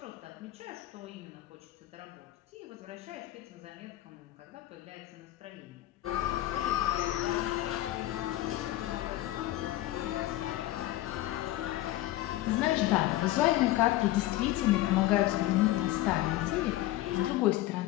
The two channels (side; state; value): right; quieter; 15.8 dB